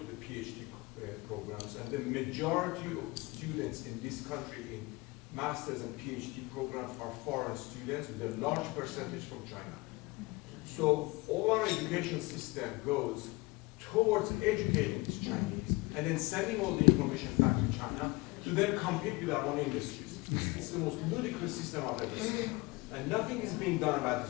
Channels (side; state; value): right; quieter; 24.0 dB